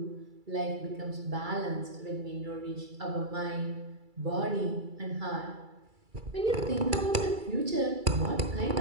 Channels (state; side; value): late; left; 2.3 ms